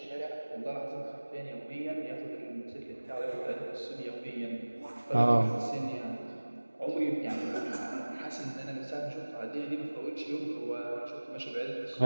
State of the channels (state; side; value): inverted; both; correlation -1.00